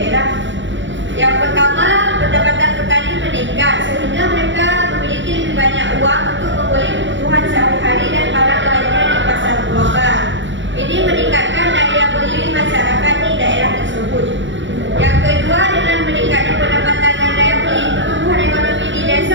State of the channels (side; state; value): left; late; 0.54 ms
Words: Yang pertama, pendapatan petani meningkat sehingga mereka memiliki lebih banyak uang untuk membeli kebutuhan sehari-hari dan barang lainnya di pasar global. Ini meningkatkan daya beli masyarakat di daerah tersebut. Yang kedua, dengan meningkatnya pendapatan dan daya beli, pertumbuhan ekonomi di